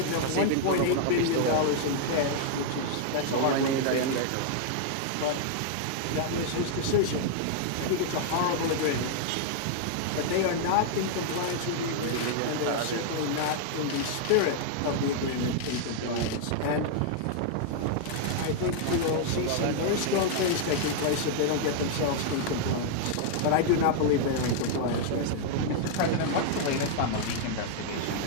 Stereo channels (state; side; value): different; both; correlation -0.01